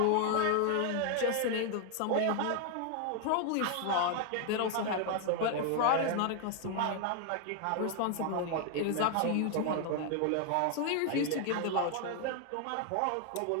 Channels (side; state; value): both; different; correlation 0.00